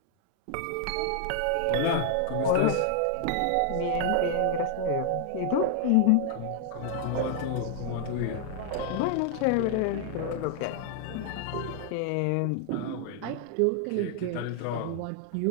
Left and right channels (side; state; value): both; different; correlation 0.00